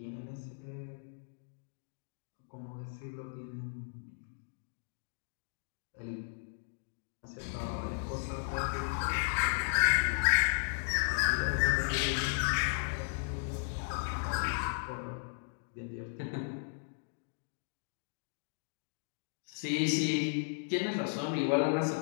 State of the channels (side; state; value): right; silent; digital silence